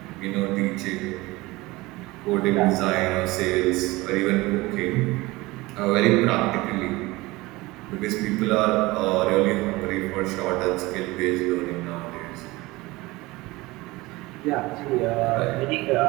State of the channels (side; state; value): left; quieter; 21.1 dB